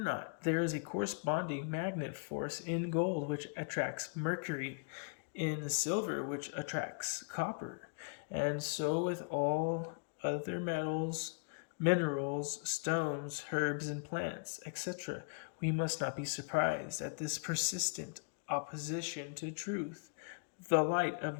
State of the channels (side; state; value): right; quieter; 37.0 dB